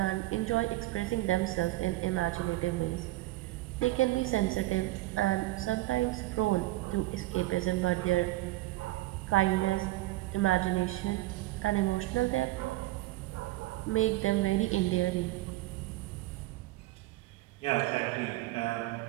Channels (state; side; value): quieter; left; 18.3 dB